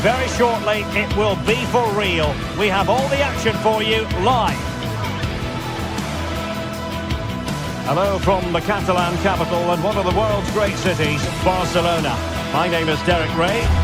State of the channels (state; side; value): identical; both; correlation 1.00